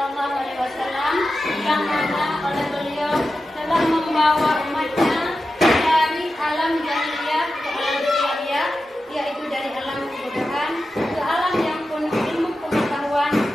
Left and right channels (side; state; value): both; normal; correlation 0.92